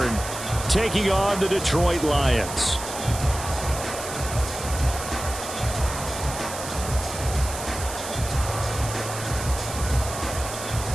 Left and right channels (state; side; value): noise; right; hiss, 9 dB below the sound